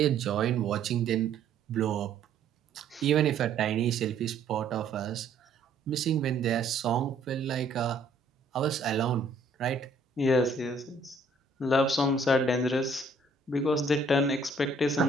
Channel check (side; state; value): left; quieter; 3.1 dB